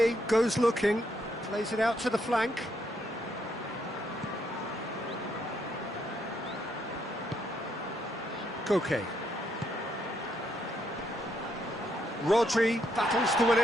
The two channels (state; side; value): normal; both; correlation 0.75